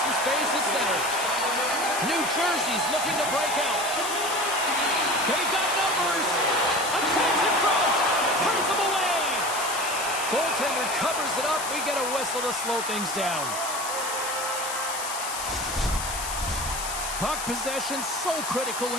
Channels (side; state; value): left; noise; hiss, 6 dB below the sound